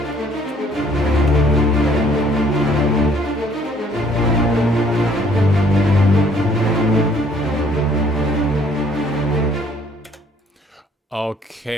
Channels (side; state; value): both; normal; correlation 0.61